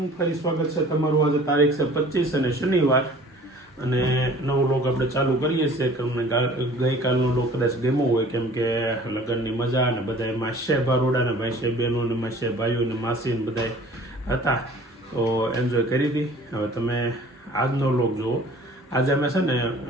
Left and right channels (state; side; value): normal; both; correlation 0.49